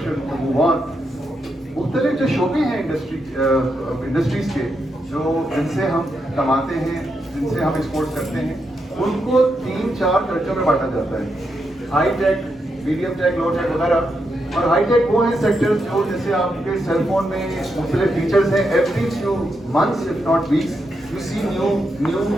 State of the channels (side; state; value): both; normal; correlation 0.83